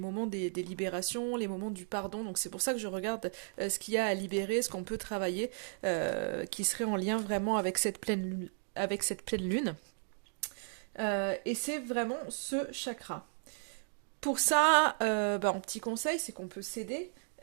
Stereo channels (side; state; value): left; silent; 55 dB below the other